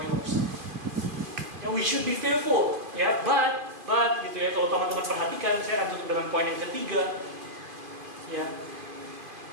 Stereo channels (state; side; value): late; left; 2.5 ms